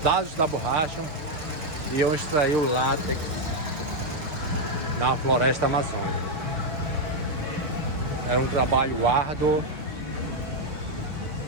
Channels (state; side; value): late; left; 6.5 ms